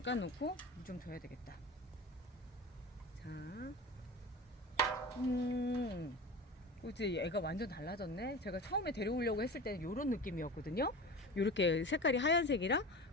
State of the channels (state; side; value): normal; both; correlation 0.32